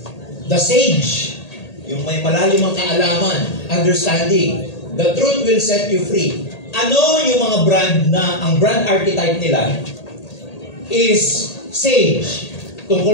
The sage. Yung may malalimang kaalaman, understanding. The truth will set you free. Ano yung mga brand na, ang brand archetype nila is sage.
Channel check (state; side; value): late; right; 1.8 ms